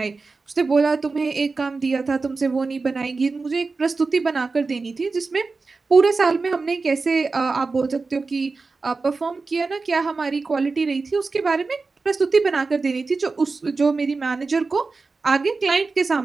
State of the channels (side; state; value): left; quieter; 4.1 dB